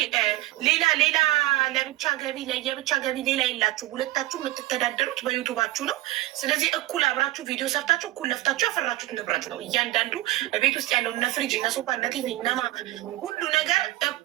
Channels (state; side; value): quieter; left; 17.4 dB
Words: ሌላ ለብቻ ገቢ ለየብቻ ገቢ ሌላ የላችሁ? ሁለታችሁ የምትተዳደሩት በዩቱባችሁ ነው። ስለዚህ እኩል አብራችሁ ቪዲዮ ሰርታችሁ እኩል ለፍታችሁ ያፈራችሁት ንብረት ነው። እያንዳንዱ ቤት ውስጥ ያለው እነ ፍሪጅ እነ ሶፋ እነ ቲቪ እነማ ሁሉ ነገር